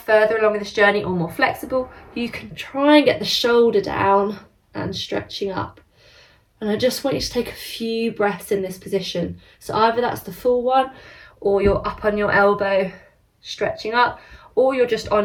further along in this journey or more flexible, you can try and get the shoulder down and stretching up. And I just want you to take a few breaths in this position. So either that's the full one, or you're up on your elbow stretching up, or you're just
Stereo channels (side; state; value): both; identical; correlation 1.00